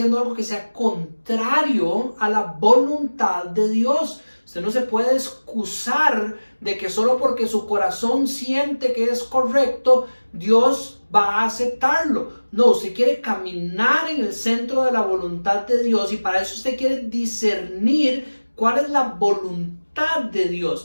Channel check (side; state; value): both; inverted; correlation -1.00